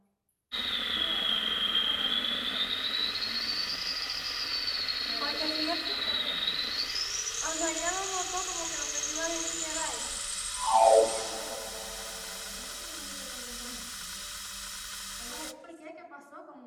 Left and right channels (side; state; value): both; identical; correlation 1.00